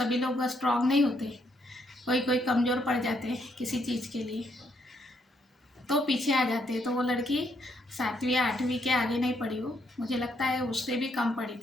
लोग स्ट्रांग नहीं होते, कोई कोई कमज़ोर पड़ जाते हैं किसी चीज़ के लिए, तो पीछे आ जाते हैं। तो वो लड़की 7वीं या 8वीं के आगे नहीं पढ़ी वो, मुझे लगता है उससे भी कम पढ़ी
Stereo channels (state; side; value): normal; both; correlation 0.74